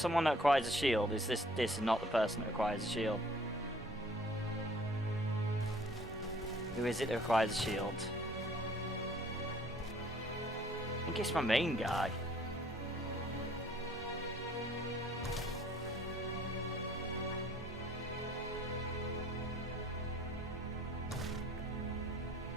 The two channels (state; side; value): normal; both; correlation 0.56